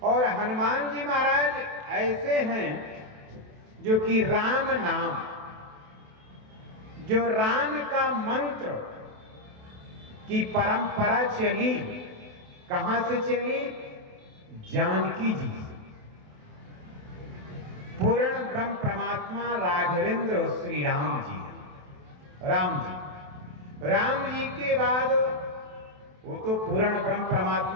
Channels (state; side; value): late; left; 28 ms